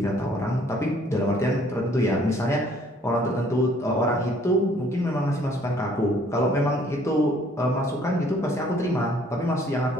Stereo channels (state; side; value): normal; both; correlation 0.60